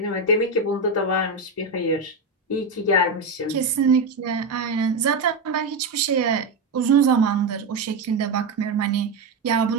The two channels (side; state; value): left; quieter; 3.5 dB